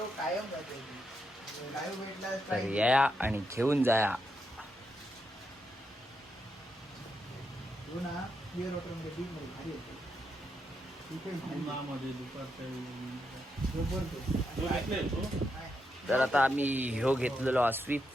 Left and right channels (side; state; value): both; normal; correlation 0.82